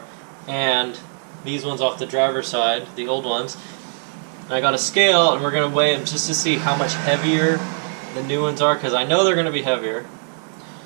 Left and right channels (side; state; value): left; silent; 61 dB below the other